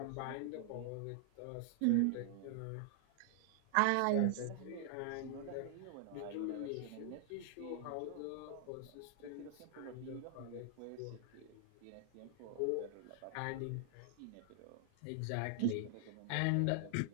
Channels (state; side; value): different; both; correlation 0.00